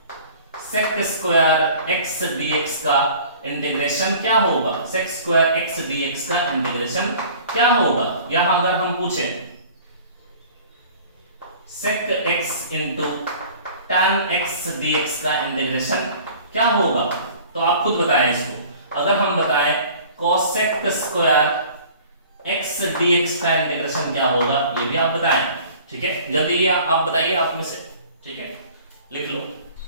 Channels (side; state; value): both; inverted; correlation -0.47